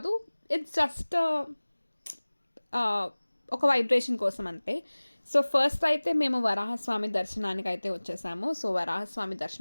ఇట్స్ జస్ట్ ఒక వైబ్రేషన్ కోసం అంతే. సో ఫస్ట్ అయితే మేము వరాహస్వామి దర్శనానికి అయితే వచ్చేసాము. సో వరాహస్వామి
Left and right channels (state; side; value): inverted; both; correlation -1.00